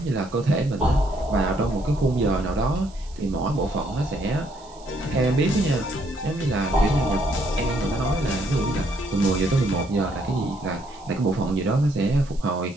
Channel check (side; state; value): right; noise; hiss, 24 dB below the sound